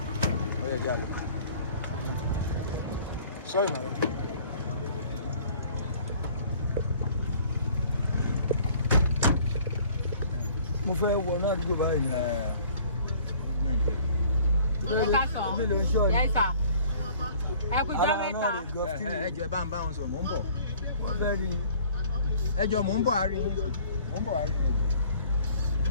Sorry, madam. Mo fẹ́ wọ náà dúró báyìí. Ẹjọ́ bá ń bá wọn sọ, mò ń bọ̀. Ẹjọ́ mò ń bọ̀ àárín yín.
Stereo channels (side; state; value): both; inverted; correlation -0.52